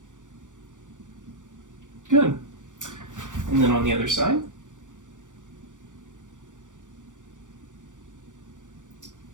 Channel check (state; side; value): late; left; 0.87 ms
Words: Good. And then on the other side.